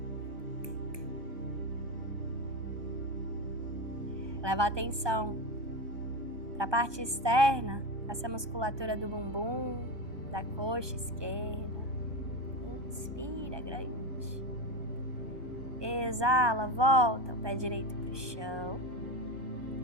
leva a atenção para a parte externa, essa musculatura do bumbum, da coxa esquerda. Inspira grande. Exala, volta o pé direito para o chão.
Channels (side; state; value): left; late; 1.2 ms